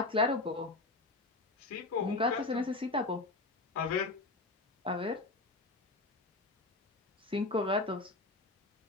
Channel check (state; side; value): quieter; right; 3.2 dB